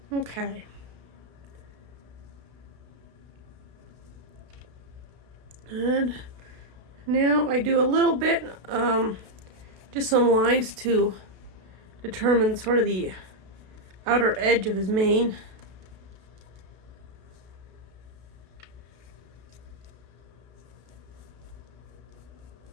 Okay. And now I do a little bit, just some lines to determine sort of the outer edge of his mane.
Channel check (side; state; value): left; late; 32 ms